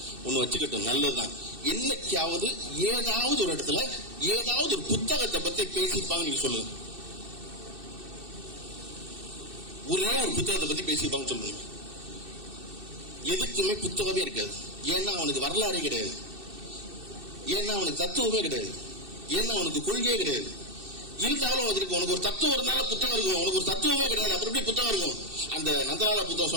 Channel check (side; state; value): left; late; 2.6 ms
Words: ஒண்ணு வச்சுக்கட்டும், நல்லதுதான். என்னைக்காவது ஏதாவது ஒரு இடத்துல ஏதாவது ஒரு புத்தகத்தை பத்தி பேசிப்பாங்க நீங்க சொல்லுங்க. ஒரே ஒரு புத்தகத்தை பத்தி பேசிப்பாங்க சொல்லுங்க. எதுக்குமே புத்தகமே இருக்காது. ஏன்னா அவனுக்கு வரலாறே கிடையாது, ஏன்னா அவனுக்கு தத்துவமே கிடையாது, ஏன்னா அவனுக்கு கொள்கையே கிடையாது. இருந்தாலும் உனக்கு ஒரு தத்துவம் இருந்தாலும் புத்தகம் இருக்கும், உனக்கு ஒரு தத்துவமே கிடையாது, அப்புறம் எப்படி புத்தகம் இருக்கும்? அந்த நந்தலாலா புத்தகம்